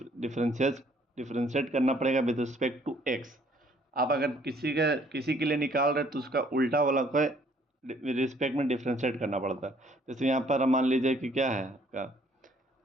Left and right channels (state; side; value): normal; both; correlation 0.62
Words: करना पड़ेगा विद रिस्पेक्ट टू x। आप अगर किसी के लिए निकाल रहे तो उसका उल्टा वाला को रिस्पेक्ट में डिफ्रेंशिएट करना पड़ता है। जैसे यहाँ पर मान लीजिए कि क्या है